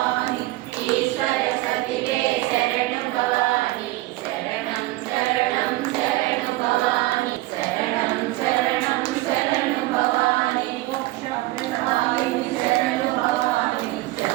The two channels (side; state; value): left; quieter; 19.1 dB